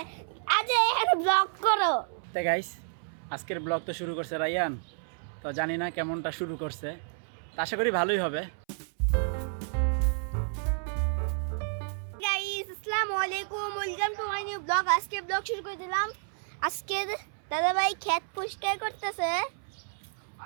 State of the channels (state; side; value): silent; left; 58 dB below the other